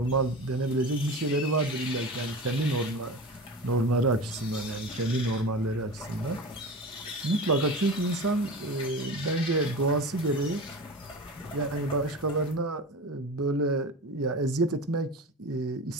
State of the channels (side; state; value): both; normal; correlation 0.31